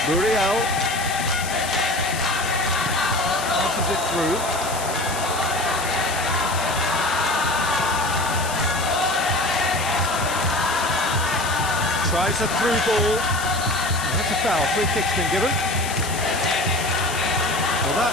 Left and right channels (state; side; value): noise; left; hiss, 8 dB below the sound